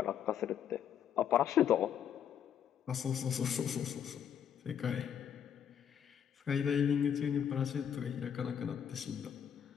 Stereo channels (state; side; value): quieter; right; 8.8 dB